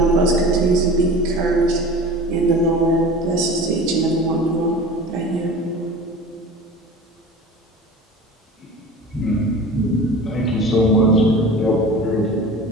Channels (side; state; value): both; normal; correlation 0.38